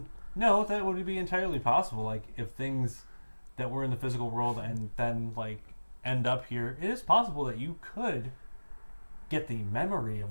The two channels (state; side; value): inverted; both; correlation -1.00